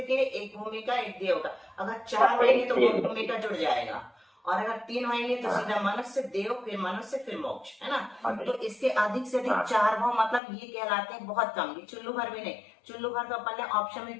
के, 1 भूमि का, 1 देव का। अगर 4 होंगे तो 2 भूमि का जुड़ जाएगा, और अगर 3 होंगे तो सीधा मनुष्य, देव, फिर मनुष्य, फिर मोक्ष, है ना। तो इसके अधिक से अधिक 4 भाव, मतलब ये कहलाते हैं बहुत कम। ये चुल्लू भर भी नहीं, चुल्लू भर तो अपन ने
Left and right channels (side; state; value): right; drops out; at 10.4 s